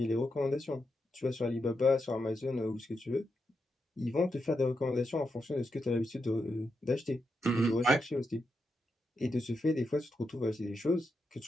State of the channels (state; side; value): normal; both; correlation 0.85